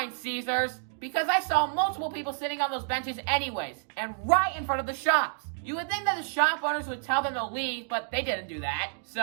Caesars, because I saw multiple people sitting on those benches anyways, and right in front of the shops. You would think that the shop owners would tell them to leave, but they didn't do that.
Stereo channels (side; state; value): left; silent; digital silence